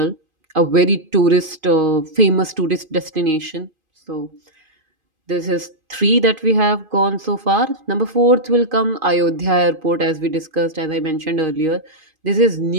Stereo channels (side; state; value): left; late; 2.5 ms